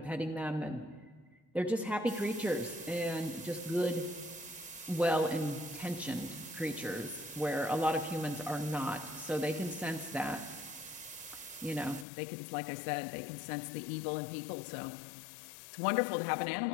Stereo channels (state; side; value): drops out; right; at 12.1 s